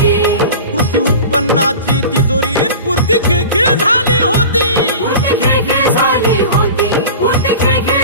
कृषी उत्पन्नाची तिजोरी पुरती खिळखिळ झाली होती, पुरती खिळखिळ झाली होती, पुरती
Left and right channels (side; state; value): both; inverted; correlation -0.34